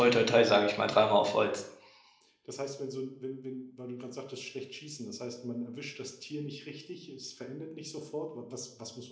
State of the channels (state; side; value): identical; both; correlation 1.00